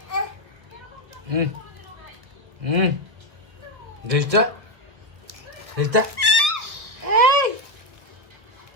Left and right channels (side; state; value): left; late; 1.9 ms